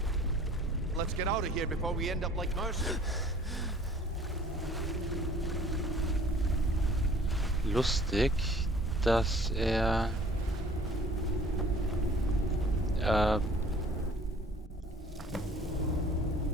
Let's get out of here before we end up like Mercer. Lustig, dass er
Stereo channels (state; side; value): normal; both; correlation 0.52